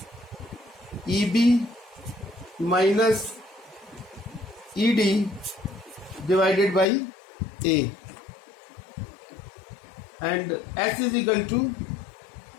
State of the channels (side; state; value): right; drops out; at 6.9 s